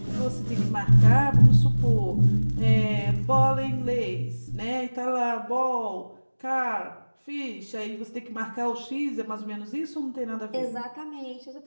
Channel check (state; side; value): inverted; both; correlation -1.00